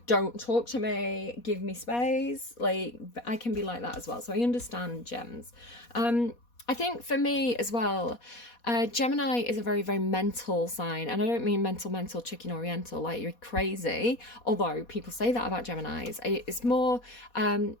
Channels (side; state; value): right; late; 4.2 ms